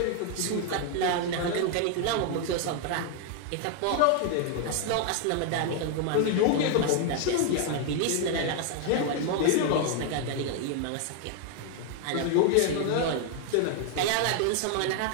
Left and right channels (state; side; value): different; both; correlation 0.00